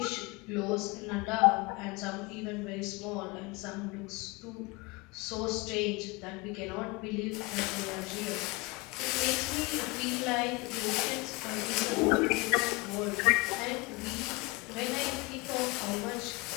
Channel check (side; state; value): right; quieter; 25.8 dB